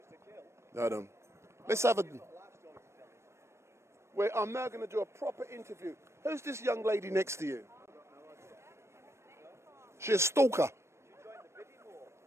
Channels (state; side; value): late; left; 0.13 ms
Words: No, I don't. Let's have a... I'm now going to do a proper interview. Who's this young lady next to you? She's a stalker.